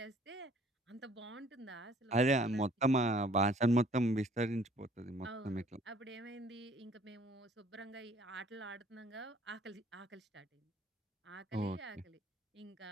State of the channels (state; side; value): normal; both; correlation 0.57